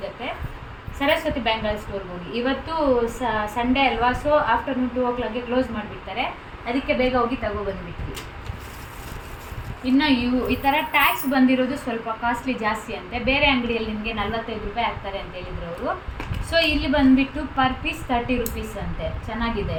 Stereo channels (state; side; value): identical; both; correlation 1.00